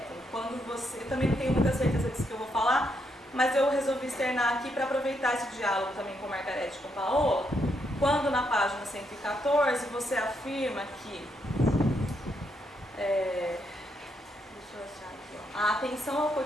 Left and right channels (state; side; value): normal; both; correlation 0.78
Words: Quando você, eu também não tenho muita certeza disso que eu vou falar, mas eu resolvi externar aqui para aproveitar esse diálogo também com Margarete e com Paola, quando na página 114 você afirma que a atenção ao